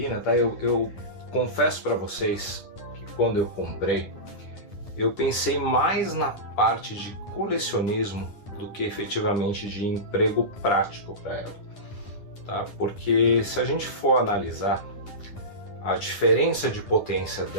tá? Eu confesso para vocês que quando eu comprei, eu pensei mais na parte de colecionismo do que efetivamente de emprego prático para ela, tá? Porque se a gente for analisar a diferença de potência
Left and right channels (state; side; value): late; right; 10 ms